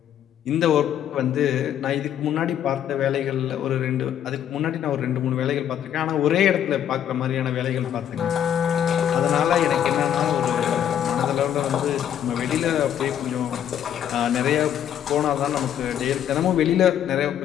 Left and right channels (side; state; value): right; quieter; 9.9 dB